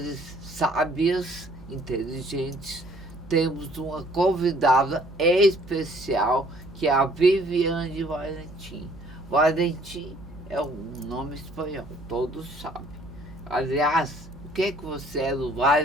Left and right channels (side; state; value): right; noise; hum, 18 dB below the sound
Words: sábias, inteligentes, temos uma convidada especial, que é a Viviane Valentim. Valentim é um nome espanhol, todos sabem. Aliás, o que você é do